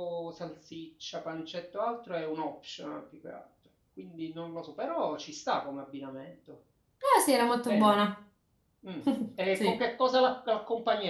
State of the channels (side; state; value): both; identical; correlation 1.00